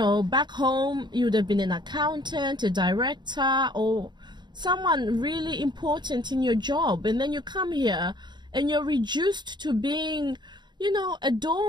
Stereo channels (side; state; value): left; late; 0.21 ms